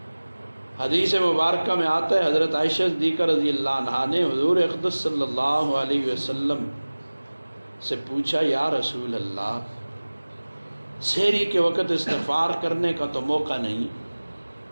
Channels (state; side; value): inverted; both; correlation -1.00